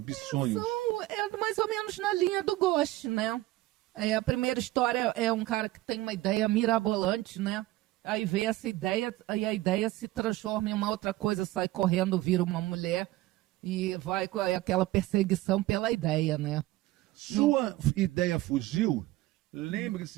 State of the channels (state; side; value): quieter; left; 17.6 dB